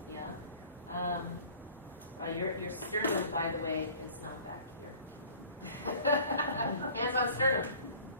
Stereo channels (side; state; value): both; inverted; correlation -0.48